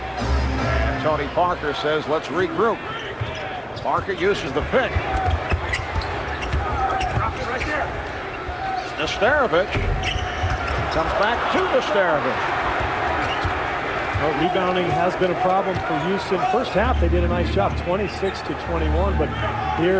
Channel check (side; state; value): both; identical; correlation 1.00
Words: And Tony Parker says, let's regroup. Parker uses the pick. Right there. Nesterovic comes back to Nesterovic. Well, rebounding has been a problem for Houston. First half, they did a nice job, 26-21, but